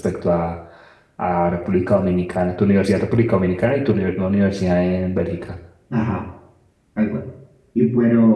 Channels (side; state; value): both; identical; correlation 1.00